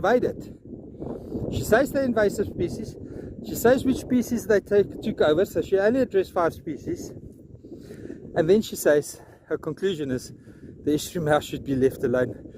She says they're invasive species. She says which species they took over, so she only addressed 5 species. And then she says, her conclusion is, the estuary mouth should be left alone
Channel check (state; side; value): identical; both; correlation 1.00